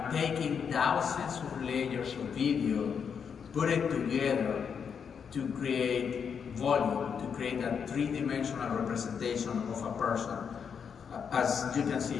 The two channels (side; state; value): right; quieter; 6.8 dB